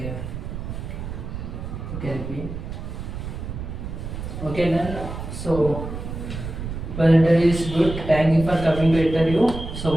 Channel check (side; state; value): right; noise; rumble, 7 dB below the sound